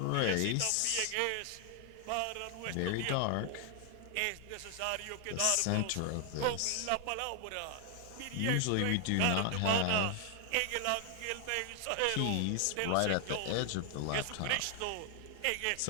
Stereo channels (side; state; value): both; different; correlation 0.00